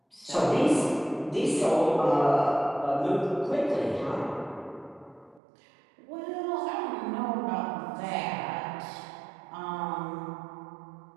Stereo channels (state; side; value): drops out; left; at 5.4 s